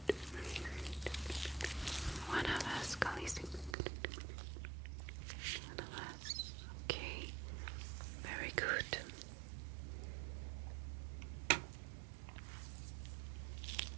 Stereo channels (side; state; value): left; drops out; at 3.8 s